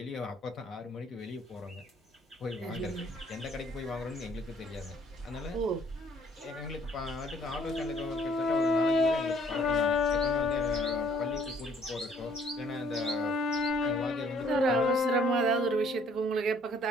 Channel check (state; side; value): normal; both; correlation 0.61